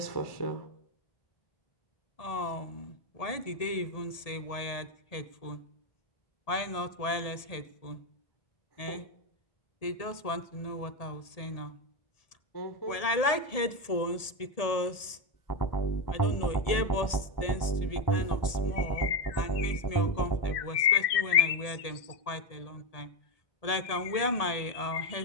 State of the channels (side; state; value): right; late; 1.8 ms